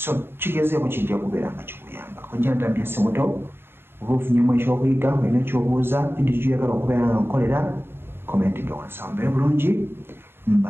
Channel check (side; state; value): left; late; 0.11 ms